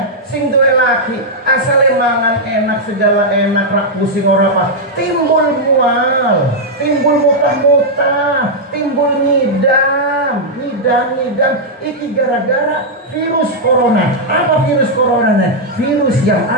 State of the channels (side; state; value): both; normal; correlation -0.05